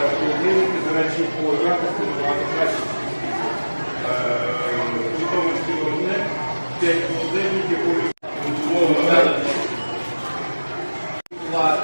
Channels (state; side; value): inverted; both; correlation -1.00